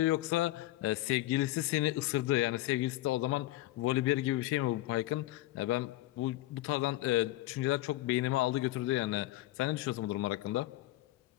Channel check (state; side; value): quieter; right; 16.6 dB